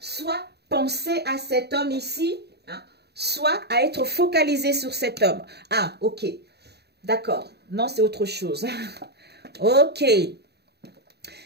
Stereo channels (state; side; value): late; left; 0.48 ms